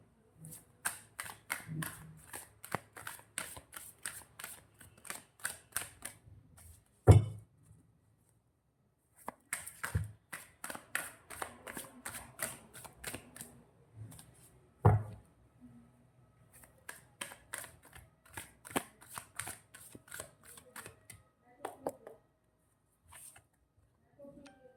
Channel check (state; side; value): identical; both; correlation 1.00